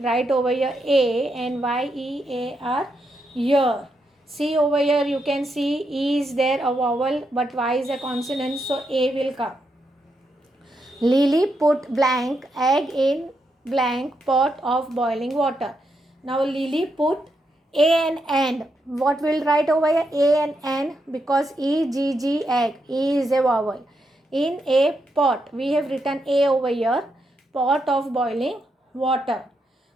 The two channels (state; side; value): normal; both; correlation 0.82